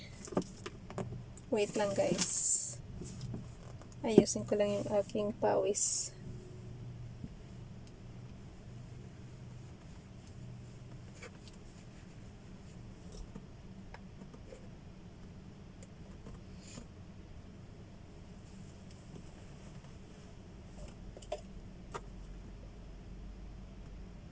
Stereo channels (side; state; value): both; identical; correlation 1.00